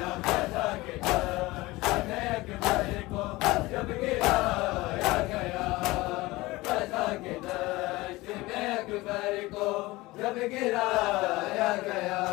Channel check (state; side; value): quieter; right; 20.4 dB